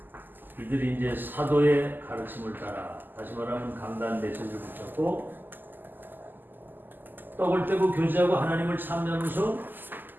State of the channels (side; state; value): left; late; 0.089 ms